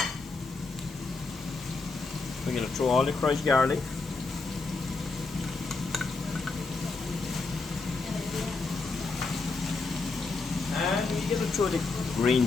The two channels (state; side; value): quieter; right; 3.9 dB